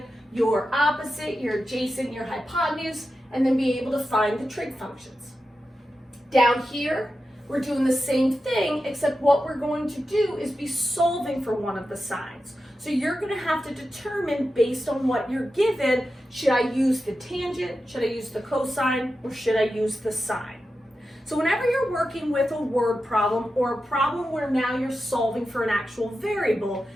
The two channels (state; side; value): normal; both; correlation 0.91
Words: your opposite, your adjacent, your hypotenuse, and then be able to find the trig functions. Down here, we're doing the same thing, except what we're going to do is be solving for one of the sides. So you're going to have to determine, based on what you're given, should I use the tangent, should I use the cosine, or should I use the sine? So whenever you're working with a word problem or a problem where now you're solving for an actual variable,